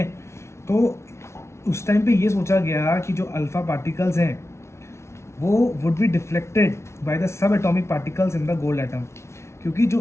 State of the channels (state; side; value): late; right; 0.13 ms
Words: तो उस टाइम पे ये सोचा गया कि जो अल्फा पार्टिकल्स हैं वो would be deflected by the sub atomic particles in the gold atom. क्योंकि जो